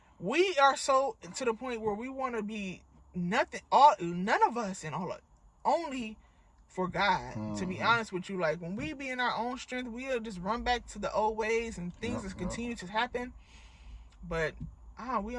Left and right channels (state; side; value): identical; both; correlation 1.00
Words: we are so to the point where we want to be none of us and all, only for God. To be honest with you, like, when we be in our own strength, we'll just run back to the old ways and things just continue to happen. But we